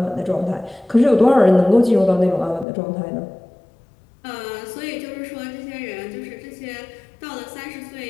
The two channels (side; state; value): right; drops out; at 2.7 s